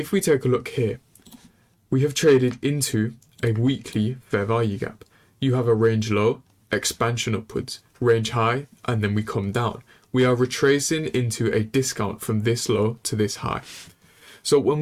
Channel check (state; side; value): identical; both; correlation 1.00